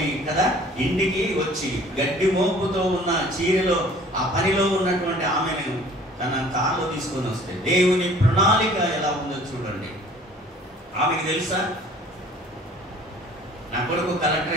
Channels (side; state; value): both; normal; correlation 0.51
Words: కదా ఇంటికి వచ్చి గడ్డి మోపుతో ఉన్న చీరలో ఆ పనిలో ఉన్నటువంటి ఆమెను తన కారులో తీసుకొని వస్తే దేవుని ప్రణాళిక ఎలా ఉందో చూడండి. ఆమెకు తెలుసా నా కొడుకు కలెక్టర్